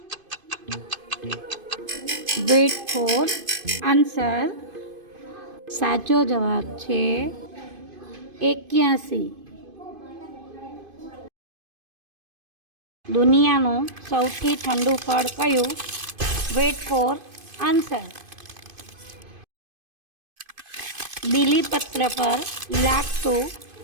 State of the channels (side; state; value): left; late; 2.5 ms